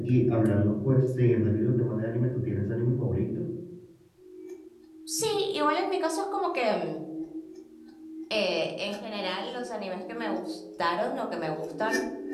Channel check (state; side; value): identical; both; correlation 1.00